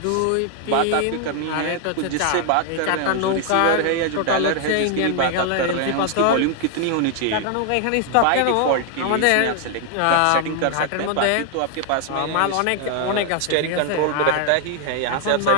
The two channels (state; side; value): different; both; correlation 0.00